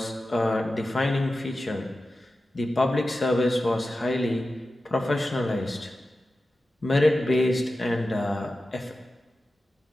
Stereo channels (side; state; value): both; normal; correlation 0.93